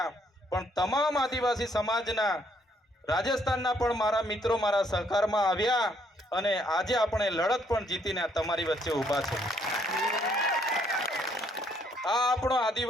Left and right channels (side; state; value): both; normal; correlation 0.69